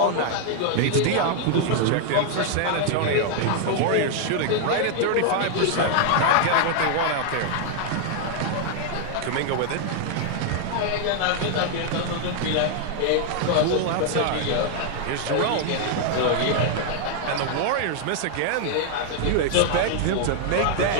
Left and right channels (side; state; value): both; different; correlation 0.00